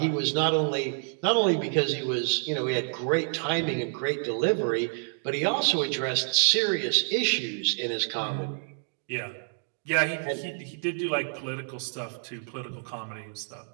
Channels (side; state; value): left; silent; 59 dB below the other